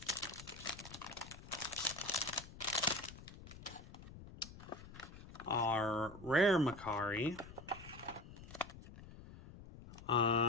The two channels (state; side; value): noise; left; rumble, 15 dB below the sound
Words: Our rare Makari.